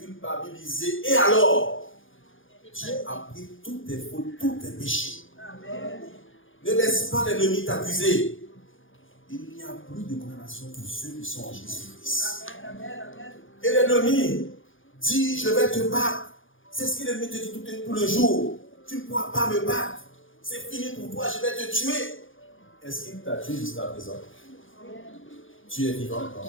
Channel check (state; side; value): late; right; 0.58 ms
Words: Et alors, Dieu a pris toutes tes fautes, tous tes péchés. Amen. Ne laisse pas l'ennemi t'accuser. Il n'y a plus de condamnation pour ceux qui sont en Jésus-Christ. Et l'ennemi dit, je vais te battre. C'est ce que l'ennemi te dit tout le jour. Tu ne pourras pas me battre. C'est fini pour toi, je vais te tuer. Est-ce qu'il t'a tué jusqu'à présent? Tu es vivant,